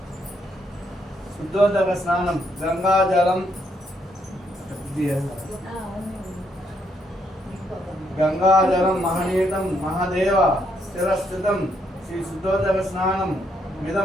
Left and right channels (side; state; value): both; normal; correlation 0.74